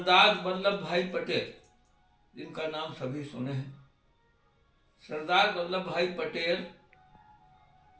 वल्लभ भाई पटेल, जिनका नाम सभी सुने हैं, सरदार वल्लभ भाई पटेल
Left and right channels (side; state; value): both; identical; correlation 1.00